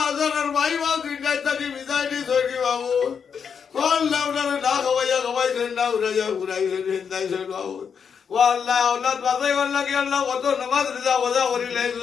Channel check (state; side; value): quieter; right; 6.8 dB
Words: যারা ভাই বাবু দুইটাই তাকে বিদায় দিয়ে ধরি বাবু আল্লাহ ওনারে না খাওয়াইছেন না উড়াইয়া ঘুরাইছেন হিন্দাইছেন বাবু ও আল্লাহ আল্লাহ বাজাই আল্লাহ কি আল্লাহ কত নামাজ রিজা বজা করি